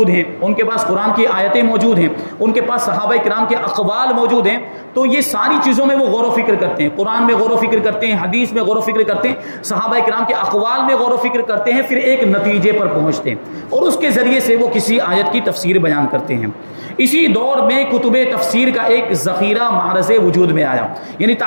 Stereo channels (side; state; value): both; inverted; correlation -1.00